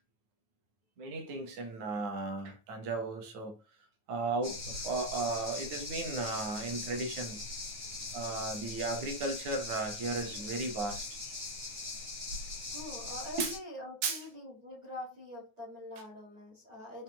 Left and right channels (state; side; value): late; left; 9.2 ms